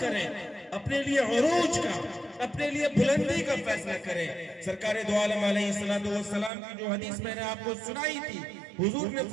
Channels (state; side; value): drops out; left; at 6.5 s